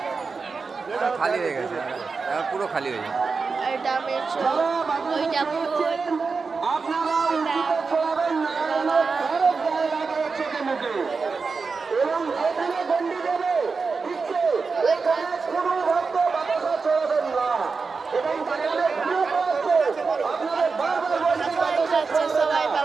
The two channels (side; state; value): left; quieter; 4.7 dB